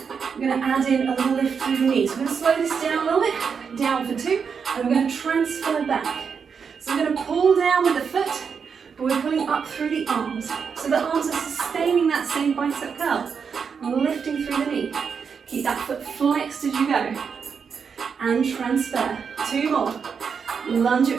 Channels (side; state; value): left; quieter; 6.2 dB